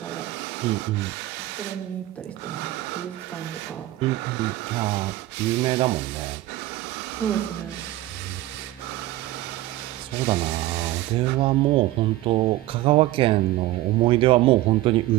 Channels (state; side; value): quieter; left; 16.2 dB